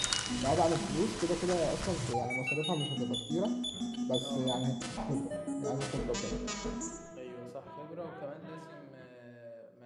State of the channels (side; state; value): both; identical; correlation 1.00